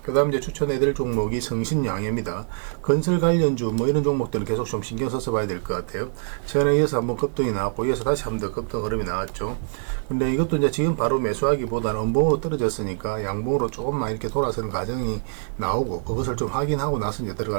그 다음 이제 추천해드릴 종목이 성신양해입니다. 건설 관련주 이런 종목들은 계속 좀 신경 써서 봐야 될 것 같아요. 최근에 이어서 한번 급등이 나왔고, 이어서 다시 한번 더 급등 흐름이 나왔죠. 근데 이것도 이제 지금 바로 매수하기보다는 음봉으로 떨어졌으니까 양봉으로 조금만 이렇게 돌아서는 과정이 나오고, 그것을 좀 확인하고 나서 이제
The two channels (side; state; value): left; silent; digital silence